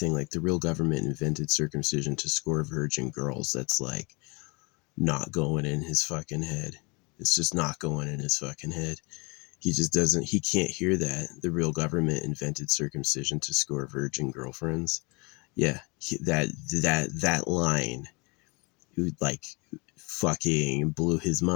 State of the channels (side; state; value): right; quieter; 29.0 dB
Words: like the real government invented circumcision to score virgin girls. That's like not going in his fucking head. It's just not going in his fucking head. He just doesn't, he can't hear that the real government invented circumcision to score virgin girlfriends. Yeah, that line, like fucking blew his